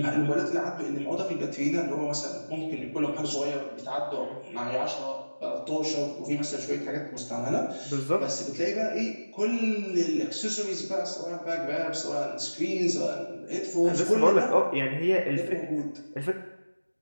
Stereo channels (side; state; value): both; inverted; correlation -1.00